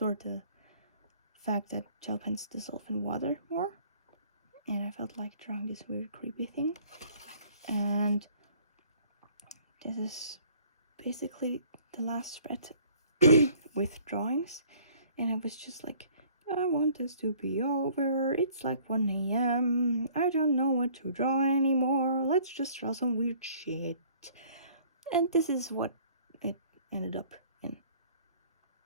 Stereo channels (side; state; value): both; inverted; correlation -0.55